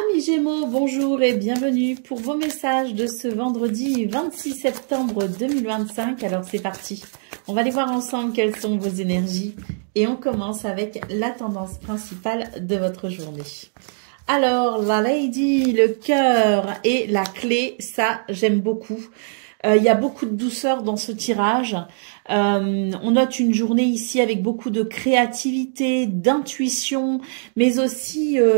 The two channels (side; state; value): left; silent; digital silence